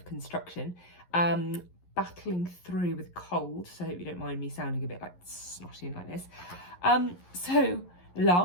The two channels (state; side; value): late; right; 11 ms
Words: Construction. Battling through with cold, so I hope you don't mind me sounding a bit like snotty and like this. So